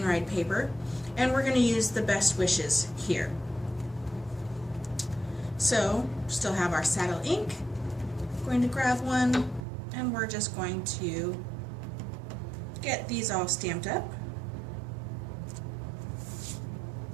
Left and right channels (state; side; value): drops out; left; at 9.7 s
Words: Ride paper. And we're going to use the Best Wishes here. So, still have our saddle ink. Going to grab one, and we're just going to get these all stamped up.